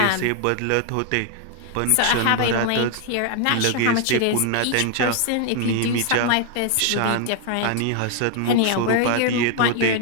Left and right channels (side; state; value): both; different; correlation 0.00